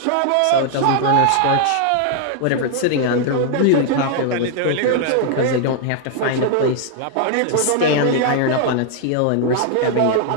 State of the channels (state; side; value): different; both; correlation 0.00